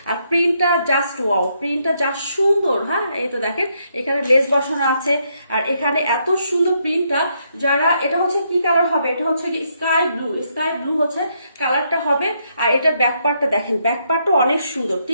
আর প্রিন্টটা জাস্ট ওয়াও, প্রিন্টটা জাস্ট সুন্দর। হ্যাঁ এই তো দেখেন এখানে লেস বসানো আছে, আর এখানে এত সুন্দর প্রিন্টটা। যারা এটা হচ্ছে কি কালার হবে, এটা হচ্ছে স্কাই ব্লু হচ্ছে কালারটা হবে। আর এটা ব্যাক পার্টটা দেখেন, ব্যাক পার্টটা অনেক সুন্দর,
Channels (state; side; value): inverted; both; correlation -0.76